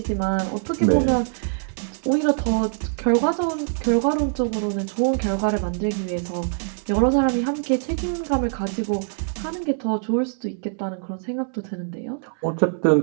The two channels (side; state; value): left; silent; 62 dB below the other